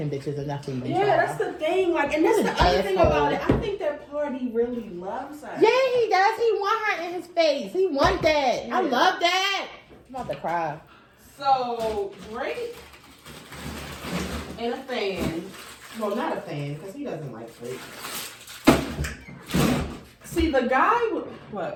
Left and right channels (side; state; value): both; identical; correlation 1.00